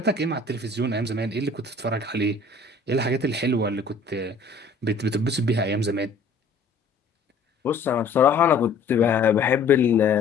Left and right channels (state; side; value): quieter; right; 3.8 dB